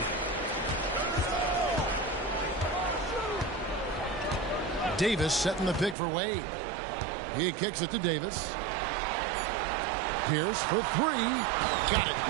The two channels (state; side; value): drops out; left; at 6.0 s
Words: Davis setting the pick for Wade. He kicks it to Davis. Pierce for three. Got it.